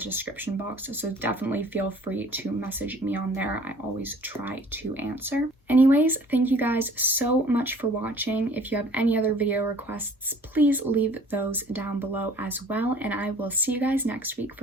box, so definitely feel free to message me on there. I always try to answer. Anyways, thank you guys so much for watching. If you have any other video requests, please leave those down below as well, and I will see you guys next week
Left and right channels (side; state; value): both; normal; correlation 0.51